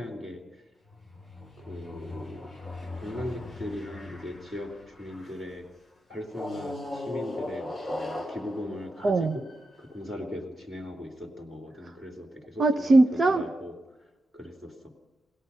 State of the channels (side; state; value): both; normal; correlation 0.88